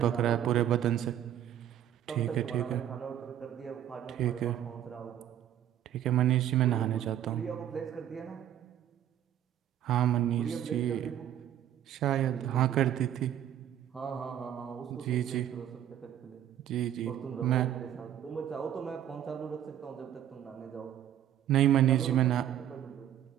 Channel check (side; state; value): left; quieter; 10.9 dB